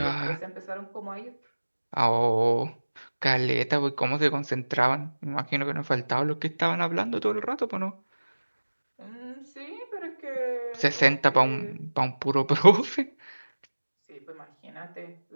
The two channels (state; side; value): inverted; both; correlation -1.00